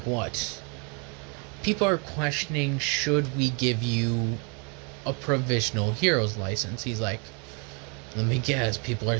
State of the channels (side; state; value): left; quieter; 34.8 dB